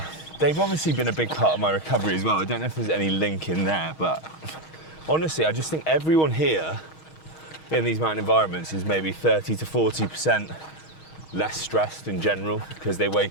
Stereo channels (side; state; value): right; late; 6.3 ms